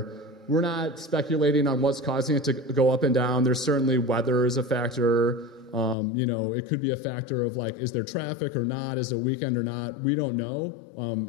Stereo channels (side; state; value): right; drops out; at 6.0 s